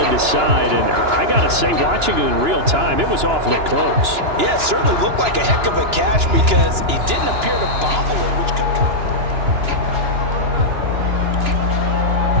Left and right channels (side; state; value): left; late; 2.9 ms